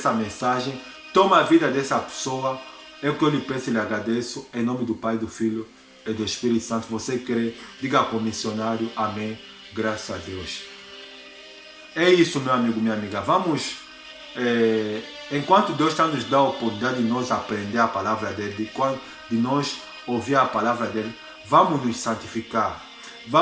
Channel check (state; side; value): identical; both; correlation 1.00